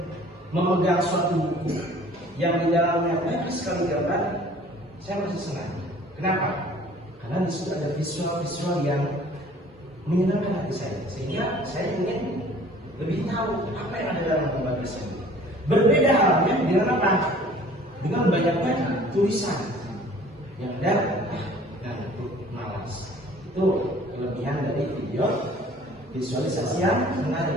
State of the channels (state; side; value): normal; both; correlation 0.51